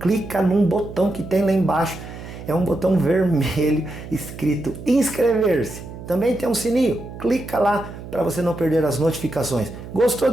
num botão que tem lá embaixo, é um botão vermelho escrito inscrever-se. Também tem um sininho, clica lá para você não perder as notificações. Gostou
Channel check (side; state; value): right; noise; hum, 13 dB below the sound